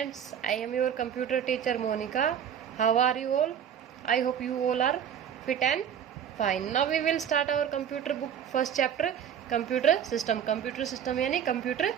I am your computer teacher Monica. How are you all? I hope you all are fit and fine. Now we will start our computer book first chapter, computer system. Computer system यानी computer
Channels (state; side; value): quieter; left; 8.8 dB